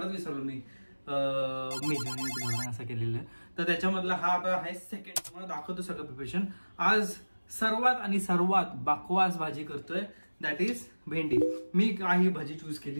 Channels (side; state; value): both; inverted; correlation -1.00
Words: विसरलो मी असं केलेलं. तर त्याच्यामधला हा आता आहे सेकंड, तुम्हाला दाखवतो सगळं प्रिपरेशन. आज सर्वात बकवास भाजी करतोय, दॅट इज भेंडी. मी काही भाजी चूज